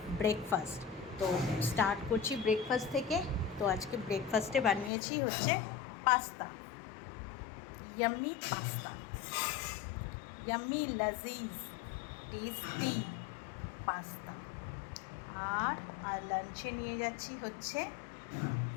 ব্রেকফাস্ট। তো স্টার্ট করছি ব্রেকফাস্ট থেকে। তো আজকে ব্রেকফাস্টে বানিয়েছি হচ্ছে পাস্তা, ইয়াম্মি পাস্তা, ইয়াম্মি লাজিজ টেস্টি পাস্তা। আর লাঞ্চে নিয়ে যাচ্ছি হচ্ছে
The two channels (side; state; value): right; drops out; at 4.9 s